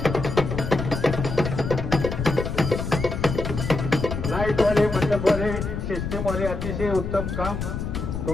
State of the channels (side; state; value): left; noise; rumble, 4 dB below the sound